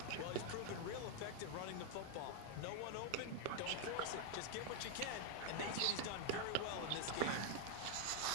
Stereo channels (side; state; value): both; different; correlation 0.01